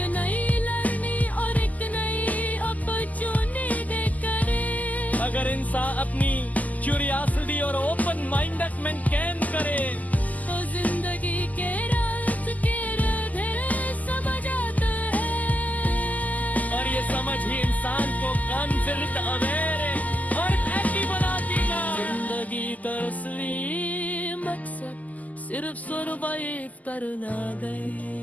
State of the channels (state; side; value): late; right; 0.078 ms